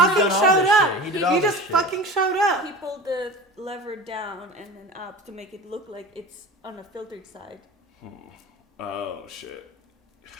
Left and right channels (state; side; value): normal; both; correlation 0.34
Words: showed up. He just fucking showed up. He pulled the lever down and then up to make it look like it's on a filtered side. Oh shit.